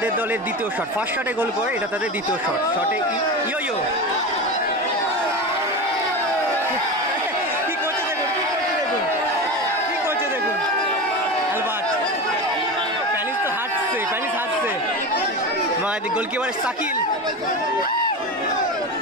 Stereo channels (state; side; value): normal; both; correlation 0.24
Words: দলের দ্বিতীয় শট। ফার্স্ট শটে গোল করে, এটা তাদের দ্বিতীয় শট। শটে ইয়ো ইয়ো কি করছে দেখুন, কি করছে দেখুন অ্যালবার্ট। প্যানিস তো হাঁটছে, প্যানিস হাঁটছে। গোলকিপার সাকিল,